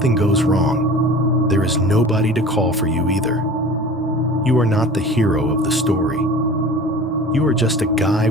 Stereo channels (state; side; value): normal; both; correlation 0.40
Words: goes wrong, there is nobody to call for you either. You are not the hero of the story. You are just a guy